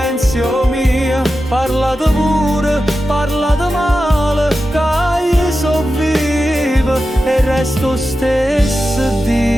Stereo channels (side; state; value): both; normal; correlation 0.92